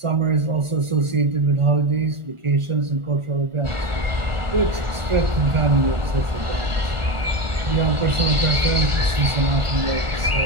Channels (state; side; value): late; left; 1.4 ms